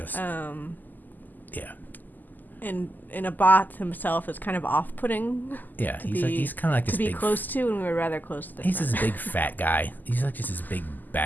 yeah. And Abath himself is kind of off-putting. Yeah, he's kind of like this to be big, close to, and we were rather close to. He's this big fat guy. He's like just this big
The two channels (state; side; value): late; right; 0.085 ms